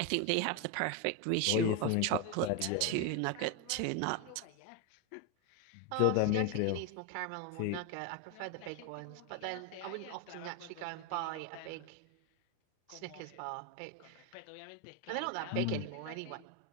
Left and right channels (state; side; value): different; both; correlation 0.02